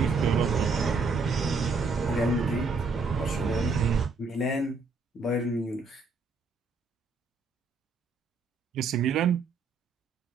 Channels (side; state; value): left; quieter; 4.1 dB